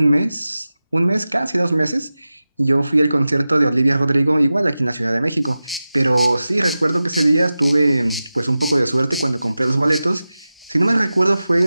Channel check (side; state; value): both; inverted; correlation -0.95